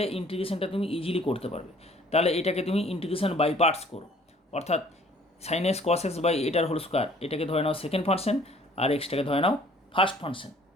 ইন্টিগ্রেশনটা তুমি ইজিলি করতে পারবে। তাহলে এটাকে তুমি ইন্টিগ্রেশন বাই পার্টস করো, অর্থাৎ sine x cos X by এটার হোল স্কোয়ার, এটাকে ধরে নাও সেকেন্ড ফাংশন আর এক্সটাকে ধরে নাও ফার্স্ট ফাংশন।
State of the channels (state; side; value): normal; both; correlation 0.56